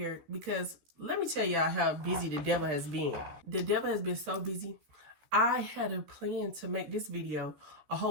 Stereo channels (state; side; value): late; left; 14 ms